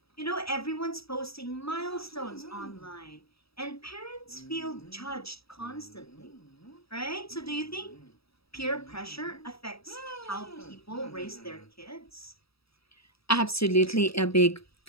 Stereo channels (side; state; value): right; late; 0.77 ms